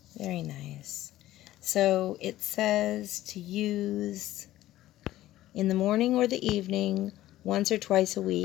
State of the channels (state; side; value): quieter; right; 14.9 dB